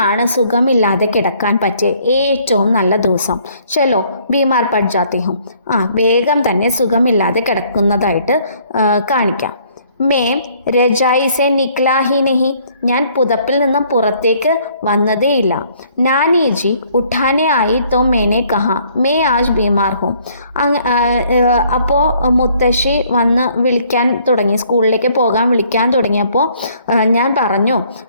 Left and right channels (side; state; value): both; inverted; correlation -0.62